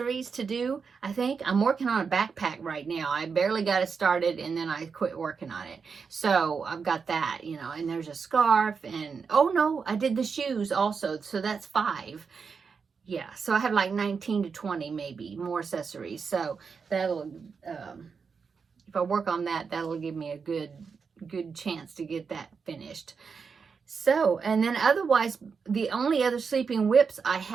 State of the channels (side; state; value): left; quieter; 5.6 dB